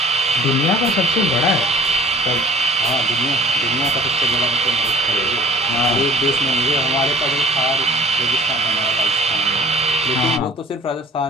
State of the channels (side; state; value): both; normal; correlation 0.50